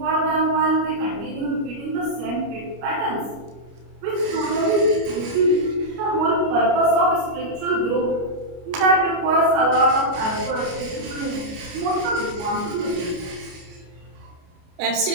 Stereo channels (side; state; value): left; late; 29 ms